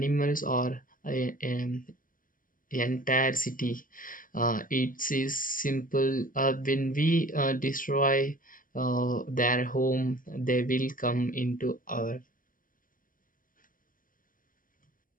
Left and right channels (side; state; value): right; late; 0.40 ms